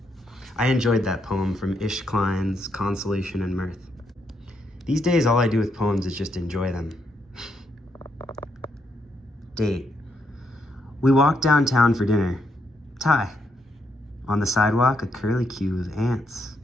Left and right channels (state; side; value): normal; both; correlation 0.78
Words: I enjoyed that poem from Klein's Consolation and Mirth. These days, all I do with poems is just enjoy them. Date. We walked downtown for dinner. Tie. On the sidewalk, a curlicue of ants.